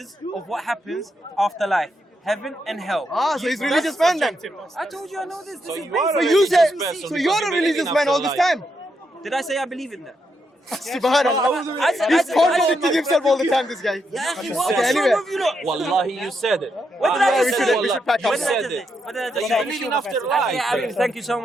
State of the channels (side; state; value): both; normal; correlation 0.81